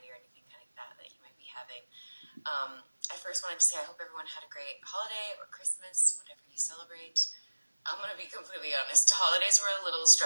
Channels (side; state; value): both; inverted; correlation -1.00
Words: or anything like that you might be having. I first wanted to say I hope everyone had a great holiday or Christmas, whatever you celebrate. I'm going to be completely honest. The holidays were a little